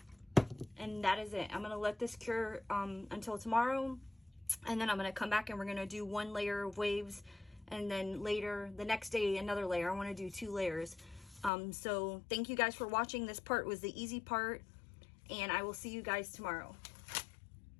And that is it. I'm gonna let this cure until tomorrow. And then I'm gonna come back and we're gonna do 1 layer of waves. And then later, the next day, another layer. I wanna do 2 layers. So thank you guys for watching. This part was the easy part. And I will see you guys tomorrow.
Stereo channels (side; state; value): right; drops out; at 11.5 s